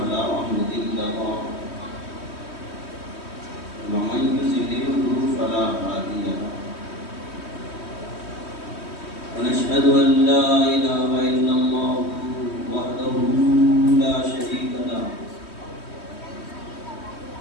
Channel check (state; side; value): late; right; 3.2 ms